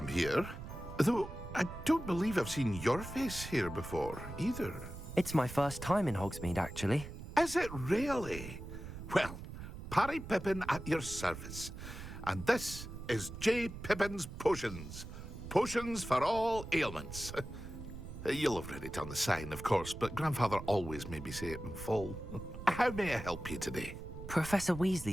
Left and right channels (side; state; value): right; noise; rumble, 10 dB below the sound